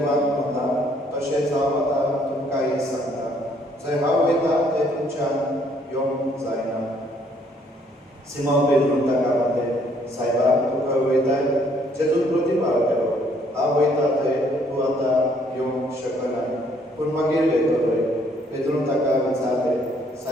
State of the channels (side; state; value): both; normal; correlation 0.65